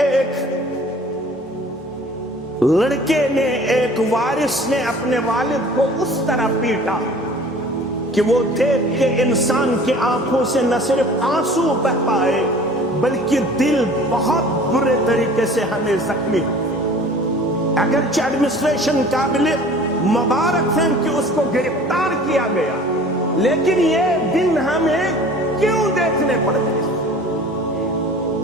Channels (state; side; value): normal; both; correlation 0.46